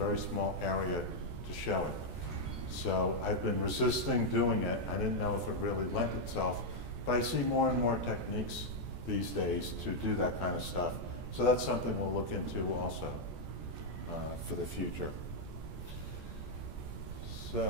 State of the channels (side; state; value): left; late; 14 ms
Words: small area to show it. So I've been resisting doing it. I didn't know if it really lent itself, but I see more and more techniques these days to do that kind of stuff. So that's something we'll look into also for the future.